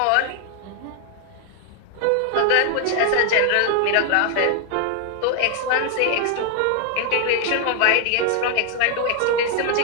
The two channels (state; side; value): different; both; correlation 0.00